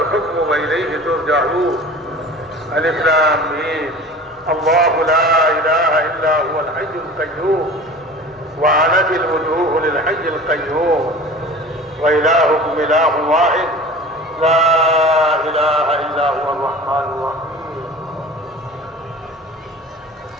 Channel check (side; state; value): both; normal; correlation 0.39